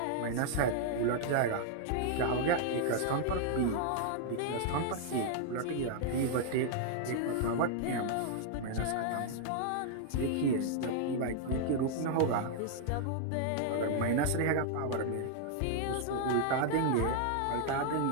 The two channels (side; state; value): both; different; correlation 0.00